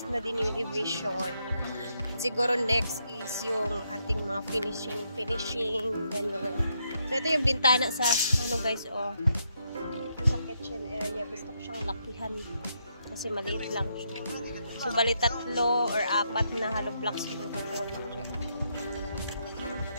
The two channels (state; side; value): inverted; both; correlation -0.78